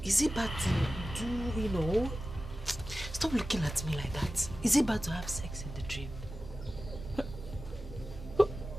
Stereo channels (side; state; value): both; normal; correlation 0.95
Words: is it bad to do, stop looking at me like that. Is it bad to have sex in the dream?